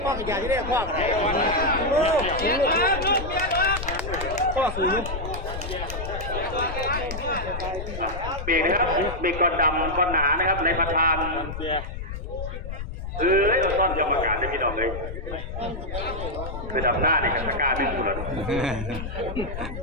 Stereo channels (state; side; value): noise; left; rumble, 7 dB below the sound